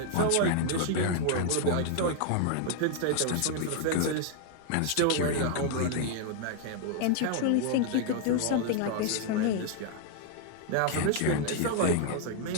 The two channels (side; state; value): both; different; correlation 0.00